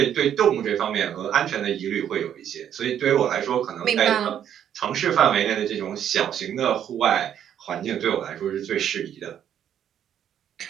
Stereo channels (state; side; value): quieter; left; 9.7 dB